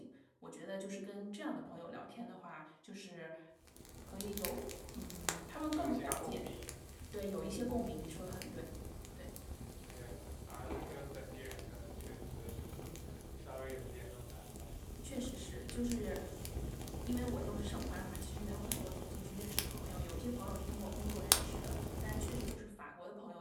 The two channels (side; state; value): both; identical; correlation 1.00